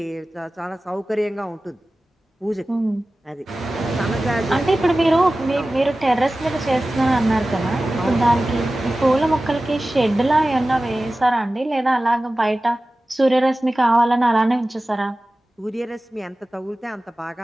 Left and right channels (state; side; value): normal; both; correlation 0.96